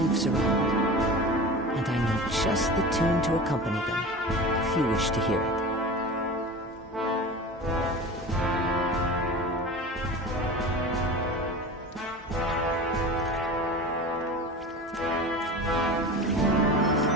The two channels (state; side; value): normal; both; correlation 0.33